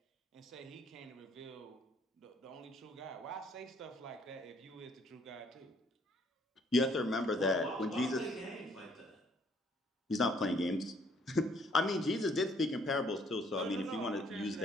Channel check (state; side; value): normal; both; correlation 0.64